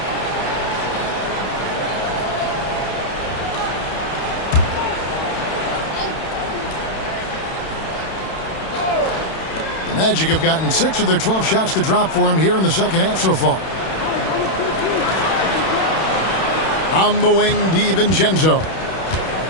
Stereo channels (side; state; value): right; late; 31 ms